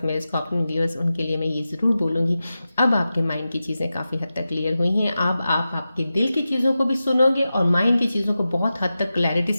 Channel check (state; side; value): inverted; both; correlation -0.93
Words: मेरे स्कॉर्पियन व्यूअर्स, उनके लिए मैं ये ज़रूर बोलूँगी, अब आपके माइंड की चीज़ें काफ़ी हद तक क्लियर हुई हैं। अब आप आपके दिल की चीज़ों को भी सुनोगे और माइंड की चीज़ों को बहुत हद तक क्लैरिटी